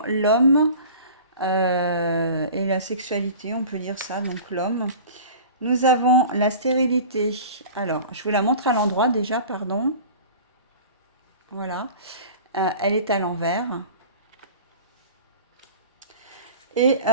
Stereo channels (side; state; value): both; inverted; correlation -0.40